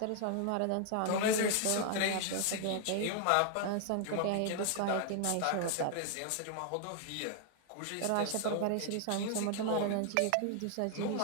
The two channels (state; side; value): different; both; correlation 0.00